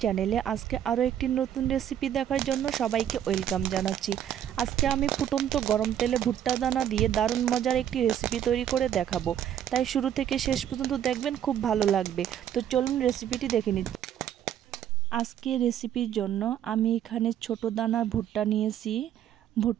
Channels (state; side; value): quieter; left; 10.3 dB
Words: চ্যানেলে আজকে আরও একটি নতুন রেসিপি দেখার জন্য সবাইকে ওয়েলকাম জানাচ্ছি। আজকে আমি ফুটন্ত গরম তেলে ভুট্টা দানা দিয়ে দারুণ মজার একটি রেসিপি তৈরি করে দেখাবো, তাই শুরু থেকে শেষ পর্যন্ত দেখবেন, খুব ভালো লাগবে। তো চলুন রেসিপিটি দেখে নিই। আজকে রেসিপির জন্য আমি এখানে ছোট দানার ভুট্টা নিয়েছি।